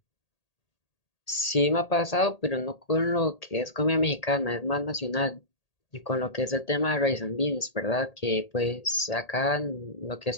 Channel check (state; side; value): late; right; 1.8 ms